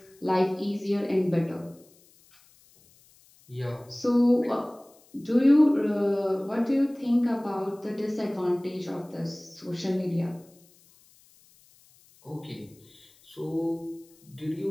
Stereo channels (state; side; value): noise; left; hiss, 29 dB below the sound